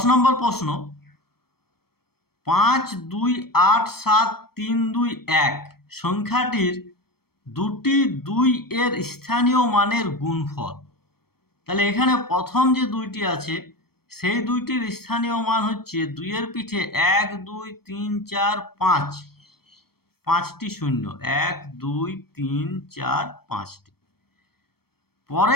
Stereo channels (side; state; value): right; late; 0.95 ms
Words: নম্বর প্রশ্ন, 5 2 8 7 3 2 1 সংখ্যাটির দুটি 2 এর স্থানীয় মানের গুণফল। তাহলে এখানে প্রথম যে দুইটি আছে সেই দুইটির স্থানীয় মান হচ্ছে 2 এর পিঠে 1 2 3 4 5, 5টি শূন্য, 1 2 3 4 5টি।